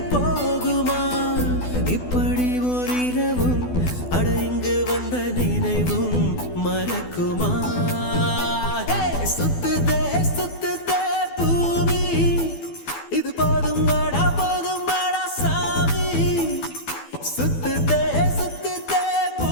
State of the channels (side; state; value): right; late; 12 ms